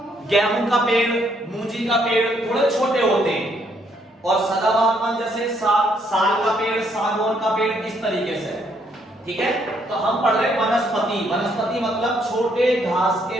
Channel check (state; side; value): normal; both; correlation 0.71